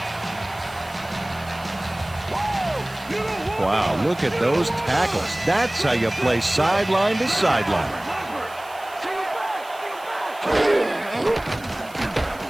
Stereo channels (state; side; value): noise; right; hiss, 22 dB below the sound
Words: Wow, look at those tackles. That's how you play sideline to sideline.